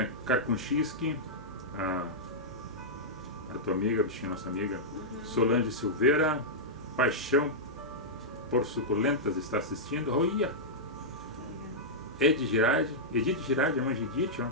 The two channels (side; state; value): right; noise; hum, 19 dB below the sound